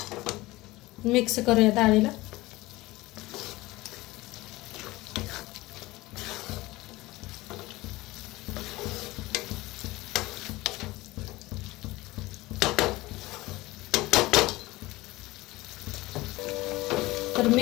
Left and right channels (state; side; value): quieter; right; 19.6 dB